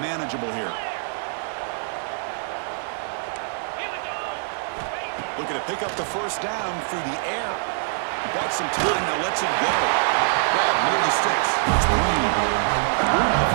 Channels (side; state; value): left; silent; 62 dB below the other